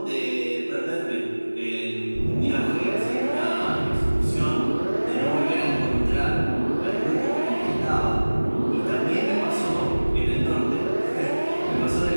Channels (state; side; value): inverted; both; correlation -1.00